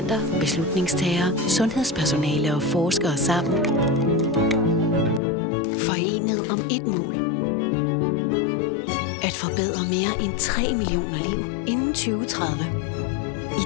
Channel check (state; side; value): drops out; right; at 5.2 s